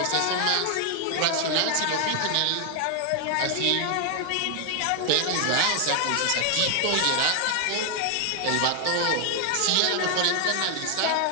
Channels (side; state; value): both; different; correlation 0.00